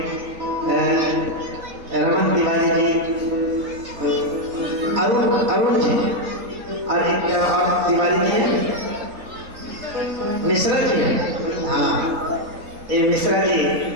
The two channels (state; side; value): late; left; 4.1 ms